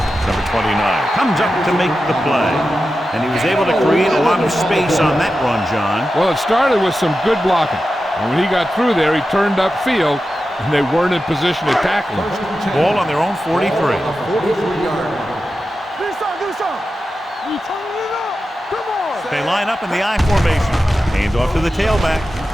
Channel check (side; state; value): both; normal; correlation 0.92